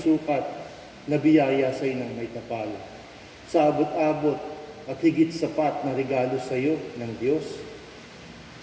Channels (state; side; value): identical; both; correlation 1.00